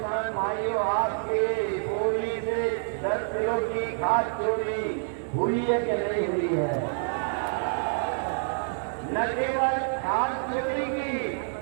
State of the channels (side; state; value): left; silent; digital silence